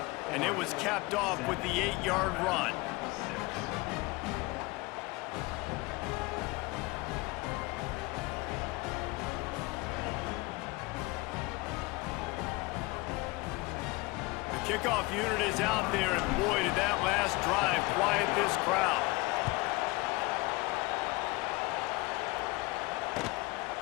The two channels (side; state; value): right; quieter; 23.5 dB